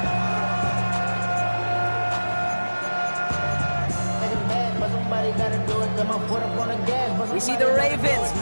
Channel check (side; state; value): both; inverted; correlation -1.00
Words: We see the Ravens